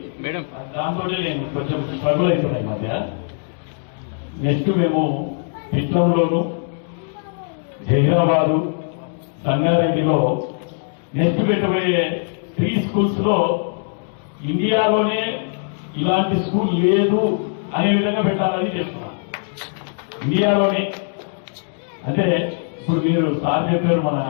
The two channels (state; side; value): silent; right; digital silence